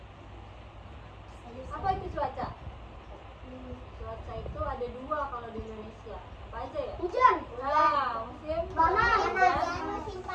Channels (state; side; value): identical; both; correlation 1.00